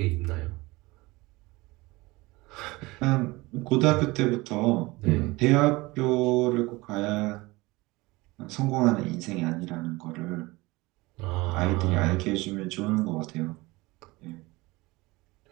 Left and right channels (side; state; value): left; quieter; 22.0 dB